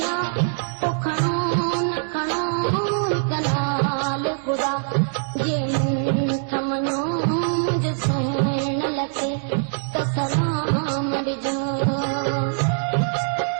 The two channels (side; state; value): left; silent; digital silence